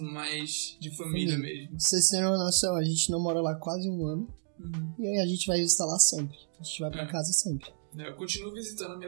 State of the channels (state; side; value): silent; left; digital silence